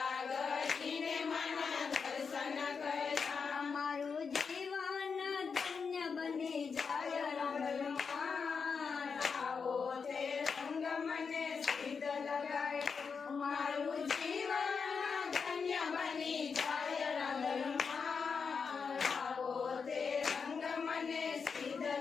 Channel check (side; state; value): right; quieter; 5.6 dB